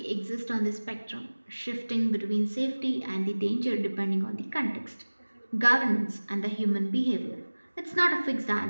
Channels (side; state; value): both; inverted; correlation -1.00